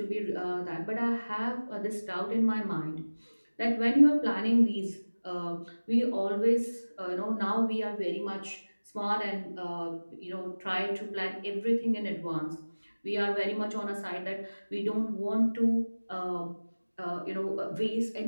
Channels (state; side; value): inverted; both; correlation -1.00